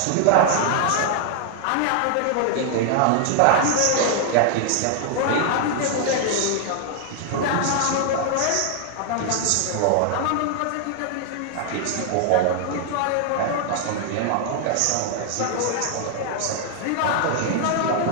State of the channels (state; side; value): different; both; correlation 0.00